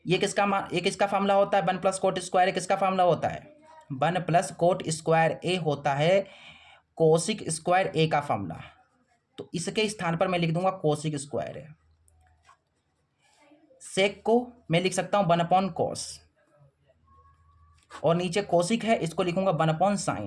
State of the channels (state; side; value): identical; both; correlation 1.00